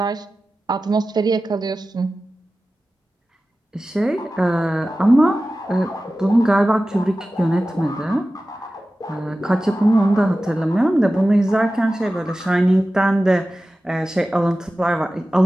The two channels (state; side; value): normal; both; correlation 0.95